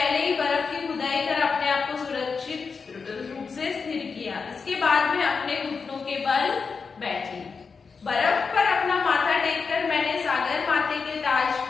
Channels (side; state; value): right; quieter; 5.2 dB